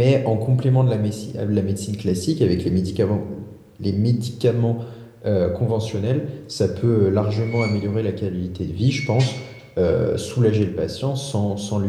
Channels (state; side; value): identical; both; correlation 1.00